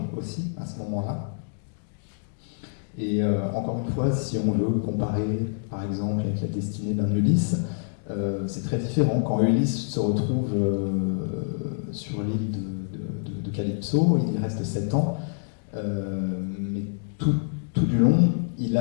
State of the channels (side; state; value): right; silent; digital silence